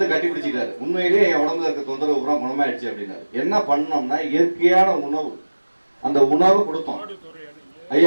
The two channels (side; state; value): both; inverted; correlation -1.00